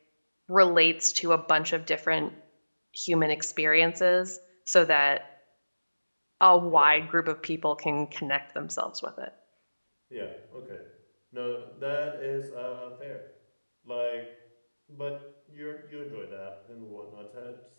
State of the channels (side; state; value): both; inverted; correlation -1.00